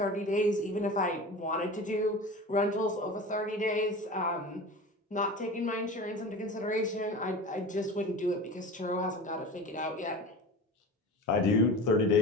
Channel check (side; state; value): both; normal; correlation 0.33